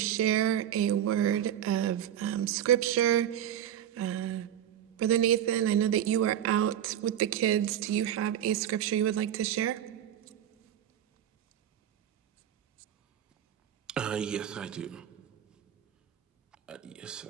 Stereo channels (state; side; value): quieter; left; 10.5 dB